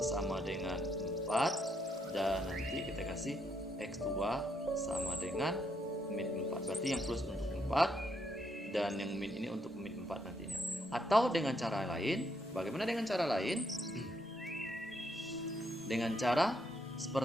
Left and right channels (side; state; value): both; normal; correlation 0.76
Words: sama dengan 4, dan nanti kita kasih X2 sama dengan min 4, berarti yang plus untuk 4 dan yang min ini untuk min 4 nantinya. Atau dengan cara lain, bagaimana dengan cara lain? Dengan cara